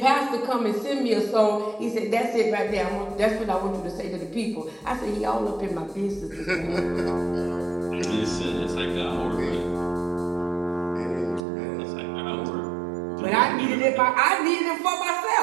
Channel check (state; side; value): drops out; left; at 11.4 s